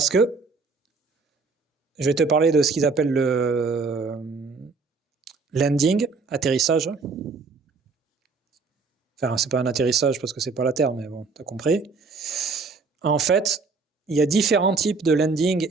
que je vais te parler de ce qu'ils appellent le landing, atterrissage. Enfin, c'est pas un atterrissage parce que c'est pas la Terre, mais bon, t'as compris. En fait, il y a différents types de landing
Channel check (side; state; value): left; quieter; 4.4 dB